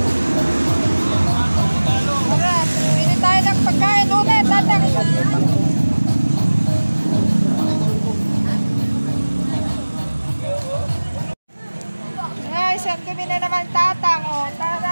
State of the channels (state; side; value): inverted; both; correlation -1.00